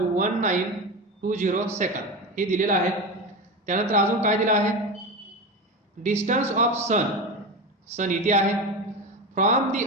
1920 second, हे दिलेलं आहे. त्यानंतर अजून काय दिलं आहे डिस्टन्स ऑफ सन, सन इथे आहे, फ्रॉम दी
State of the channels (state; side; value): normal; both; correlation 0.21